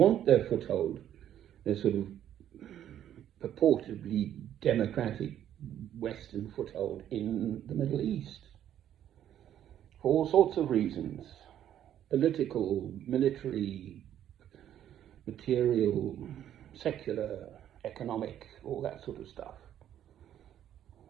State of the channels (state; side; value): quieter; left; 10.8 dB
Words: their foothold, their sort of purportedly democratic Western foothold in the Middle East. For all sorts of reasons. Political, military, material, secular, economic, all that sort of stuff.